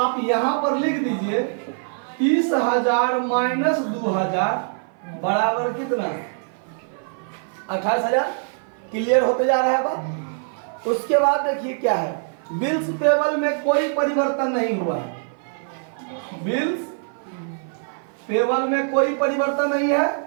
यहां पर लिख दीजिए 30,000 माइनस 2,000 बराबर कितना? 28,000। क्लियर होते जा रहा है बात। उसके बाद देखिए क्या है, बिल्स पेबल में कोई परिवर्तन नहीं हुआ है। बिल्स पेबल में कोई परिवर्तन नहीं है।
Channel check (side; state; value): left; silent; 55 dB below the other